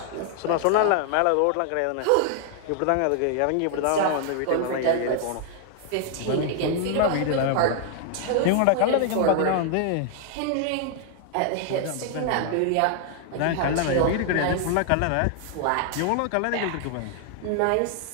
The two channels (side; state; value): both; different; correlation 0.00